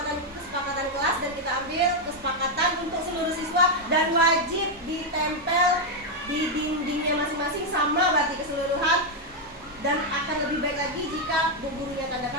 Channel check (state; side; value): normal; both; correlation 0.02